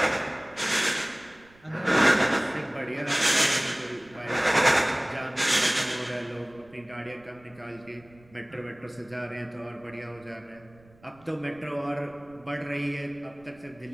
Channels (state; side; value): noise; right; rumble, 27 dB below the sound